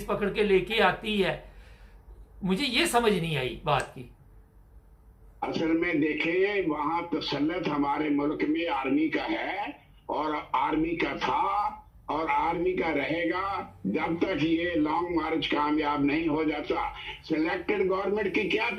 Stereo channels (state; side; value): identical; both; correlation 1.00